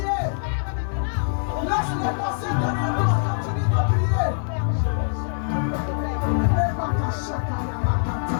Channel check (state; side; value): silent; right; 56 dB below the other